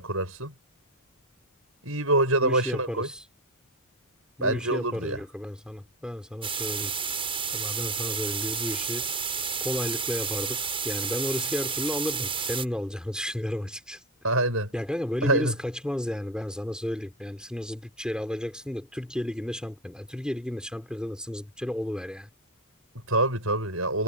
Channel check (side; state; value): both; normal; correlation 0.15